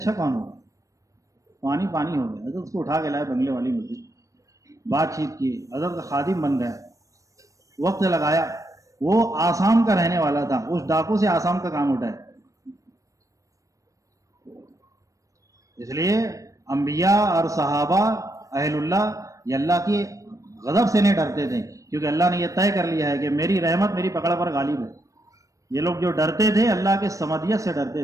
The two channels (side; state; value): left; late; 0.16 ms